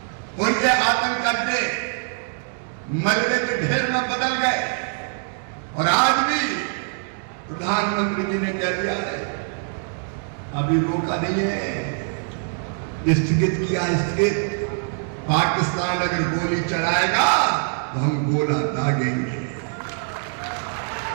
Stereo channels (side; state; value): left; silent; 55 dB below the other